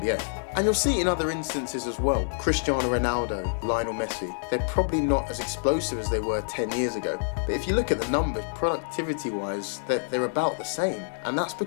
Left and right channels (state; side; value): silent; right; digital silence